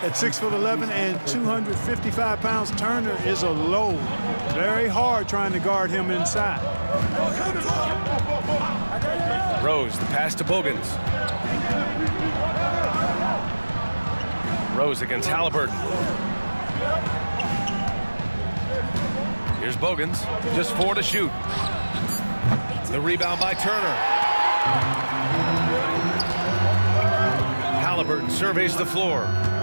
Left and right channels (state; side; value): inverted; both; correlation -1.00